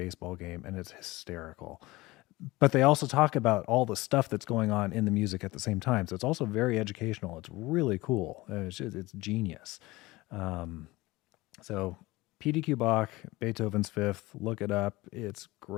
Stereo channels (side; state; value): right; quieter; 20.4 dB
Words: game, and it's hysterical. But they also talk about all the stuff that's going on in the music at the same time. So it's also very educational. It's really cool. It's genius. So PDQ Bach, Beethoven's Fifth, look it up. It's